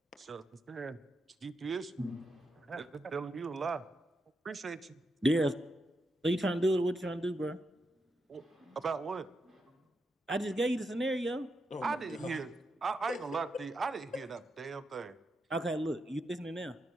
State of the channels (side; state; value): both; normal; correlation 0.84